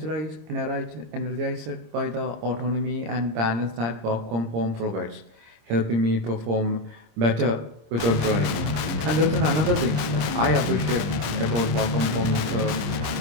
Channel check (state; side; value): late; left; 26 ms